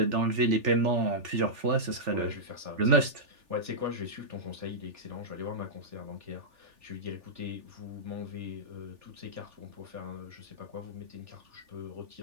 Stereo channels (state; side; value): late; left; 3.4 ms